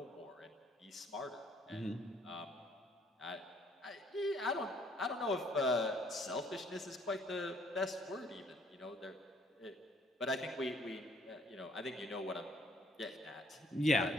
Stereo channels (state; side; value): normal; both; correlation 0.63